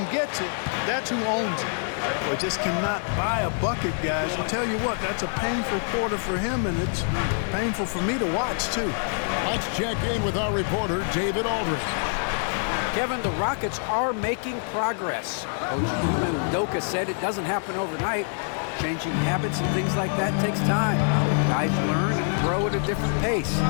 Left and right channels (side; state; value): right; silent; 61 dB below the other